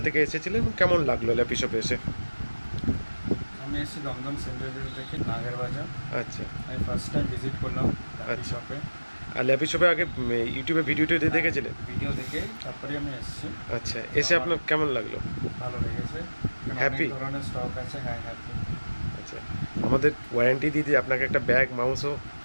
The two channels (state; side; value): inverted; both; correlation -1.00